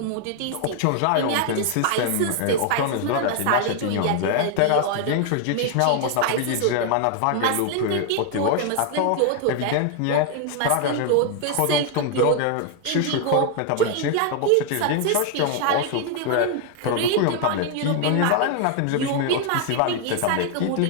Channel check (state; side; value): different; both; correlation 0.00